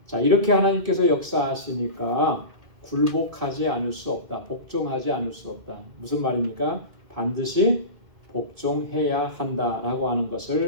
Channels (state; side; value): late; left; 2.1 ms